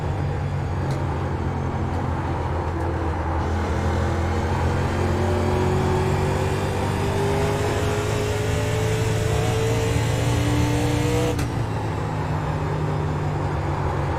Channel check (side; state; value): both; identical; correlation 1.00